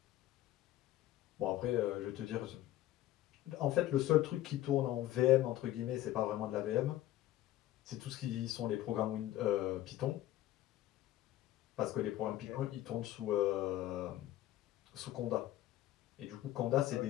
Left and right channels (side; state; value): right; quieter; 14.4 dB